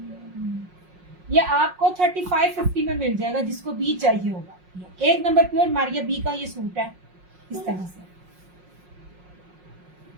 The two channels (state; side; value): late; left; 5.5 ms